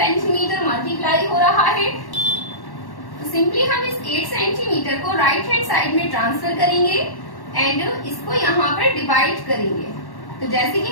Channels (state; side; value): late; right; 1.1 ms